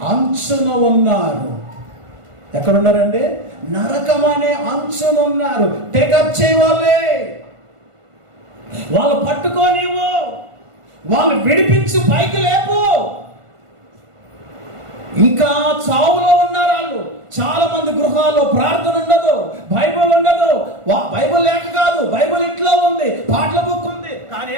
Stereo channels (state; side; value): late; left; 1.5 ms